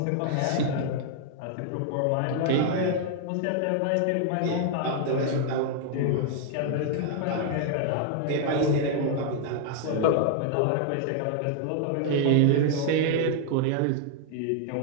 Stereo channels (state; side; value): different; both; correlation 0.00